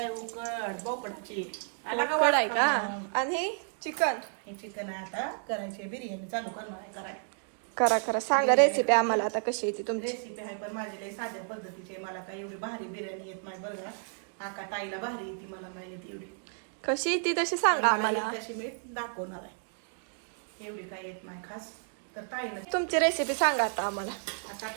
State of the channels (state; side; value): silent; left; 57 dB below the other